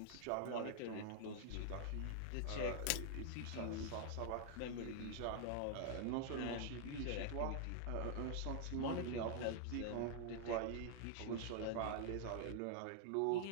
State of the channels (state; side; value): different; both; correlation 0.00